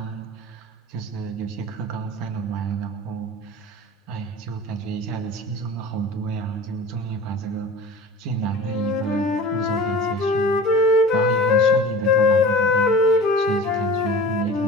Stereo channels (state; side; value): normal; both; correlation 0.38